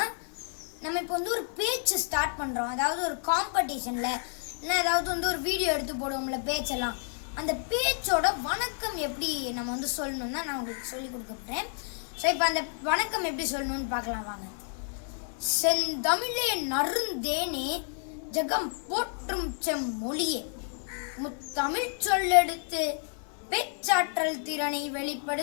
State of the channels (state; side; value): silent; right; 58 dB below the other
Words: நம்ம இப்போ ஒரு பேச்சு ஸ்டார்ட் பண்ணுறோம். அதாவது ஒரு காம்படிஷனில் இல்லை ஏதாவது ஒரு வீடியோ எடுத்து போடுவோம்ல பேச்செல்லாம், அந்த பேச்சோட வணக்கம் எப்படி நம்ம சொல்லணும் தான் நான் உங்களுக்கு சொல்லி கொடுக்க போகிறேன். ஸோ இப்போ அந்த வணக்கம் எப்படி சொல்லணும்னு பார்க்கலாம் வாங்க. செந்தமிழே நறுந்தேனே ஜகம் போற்றும் செம்மொழியே, முத்தமிழ் சொல்லெடுத்து பேச்சாற்றல் திறனை